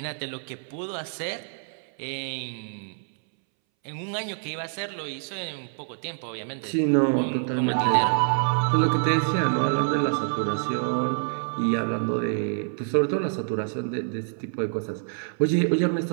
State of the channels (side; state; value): left; silent; 61 dB below the other